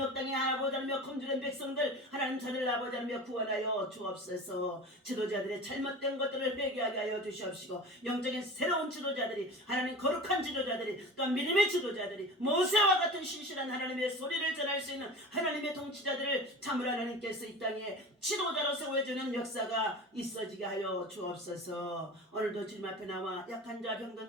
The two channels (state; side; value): normal; both; correlation 0.34